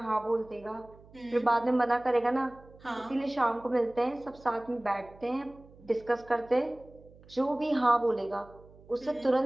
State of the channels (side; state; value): right; noise; hum, 24 dB below the sound